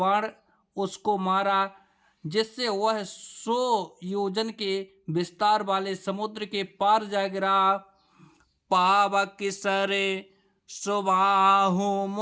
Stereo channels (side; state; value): both; identical; correlation 1.00